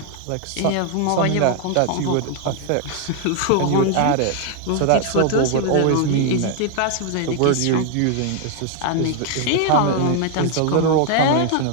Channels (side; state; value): both; different; correlation 0.00